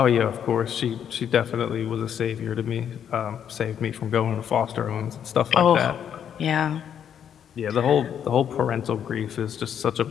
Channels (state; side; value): quieter; right; 8.8 dB